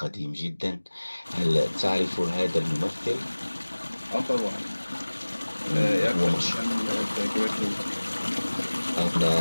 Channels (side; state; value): both; inverted; correlation -1.00